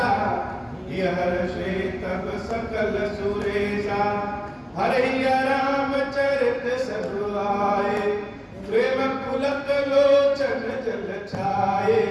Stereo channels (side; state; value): both; identical; correlation 1.00